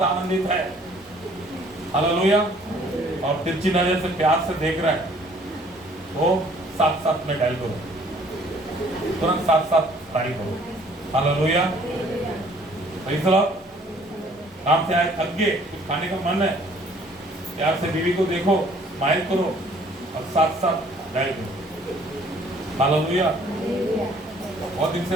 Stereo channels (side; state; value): both; normal; correlation 0.58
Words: आनंदित है, हालेलुया, और तिरछी नजर से प्यार से देख रहा है, वो 7-7 में डायल करो, तुरंत 7-7 डायल करो। हालेलुया। काम से आए थक गए, कुछ खाने का मन है, प्यार से बीवी को देखो, स्माइल करो और 7-7 डायल करो। हालेलुया। बहुत दिन से